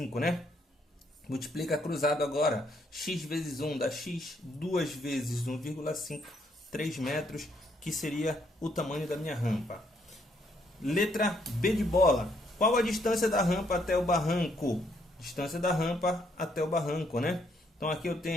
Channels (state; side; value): normal; both; correlation 0.71